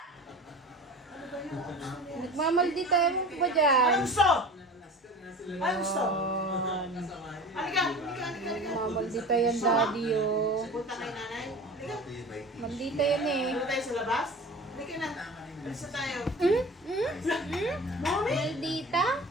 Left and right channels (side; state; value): both; normal; correlation 0.37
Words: Nagmamaldita mo ba dyan? Ano gusto? Ano gusto? Halika! Nagmamaldita yan, daddy, oh. Punta kay nanay. Halika. Maldita yan eh. Punta tayo sa labas. Halika na. Alis na tayo. Mommy! Maldita?